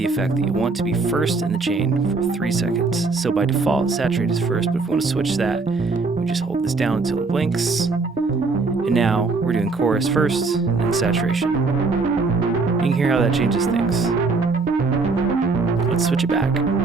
effect that you want to be first in the chain for 3 seconds. So by default, saturate is first, but if we want to switch that, we just hold this down until it blinks. And now we're doing chorus first and then saturation. You can hear how that changes things. Let's switch it back.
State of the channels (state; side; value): quieter; left; 3.9 dB